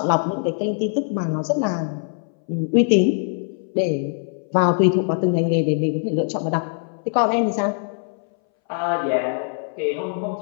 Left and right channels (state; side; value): silent; right; 62 dB below the other